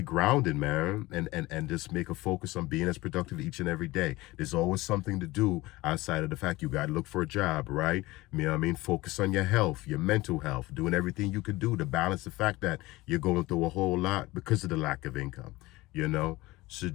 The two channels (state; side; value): quieter; right; 19.9 dB